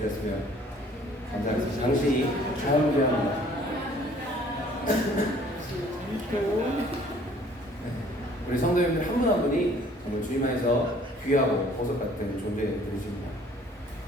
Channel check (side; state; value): both; normal; correlation 0.56